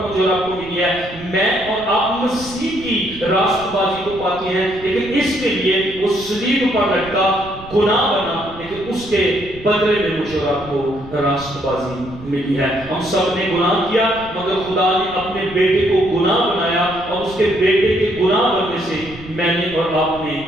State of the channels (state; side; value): noise; right; rumble, 17 dB below the sound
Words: مجھے اور آپ کو ملی ہے۔ میں اور آپ مسیح کی راست بازی کو پاتے ہیں، لیکن اس کے لیے وہ صلیب پر لٹکا، گناہ بنا، لیکن اس کے بدلے میں مجھے اور آپ کو راست بازی ملی ہے۔ ہم سب نے گناہ کیا، مگر خدا نے اپنے بیٹے کو گناہ بنایا، اور اس کے بیٹے کے گناہ بننے سے میں نے اور آپ